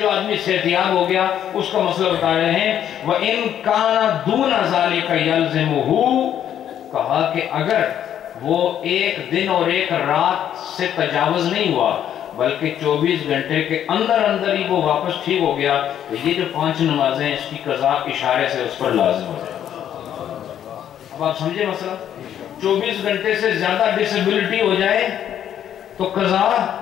آدمی صحتیاب ہو گیا اس کا مسئلہ بتا رہے ہیں۔ وَإِن كَانَ دُونَ ذَلِكَ يَلْزِمُهُ، کہا کہ اگر وہ ایک دن اور ایک رات سے تجاوز نہیں ہوا بلکہ 24 گھنٹے کے اندر اندر ہی وہ واپس ٹھیک ہو گیا تو یہ جو 5 نمازیں اس کی قضا اشارے سے اس پر لازم ہو جائے۔ اب آپ سمجھے مسئلہ؟ 24 گھنٹے سے زیادہ ڈسیبلٹی ہو جائے تو قضا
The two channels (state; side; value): quieter; right; 10.1 dB